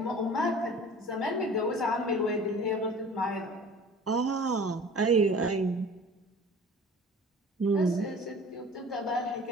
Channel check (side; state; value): both; normal; correlation 0.44